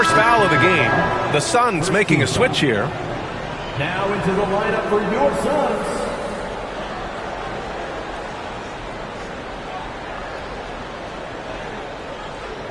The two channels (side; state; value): both; identical; correlation 1.00